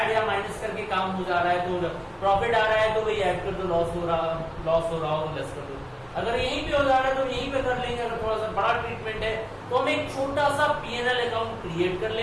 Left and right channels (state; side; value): identical; both; correlation 1.00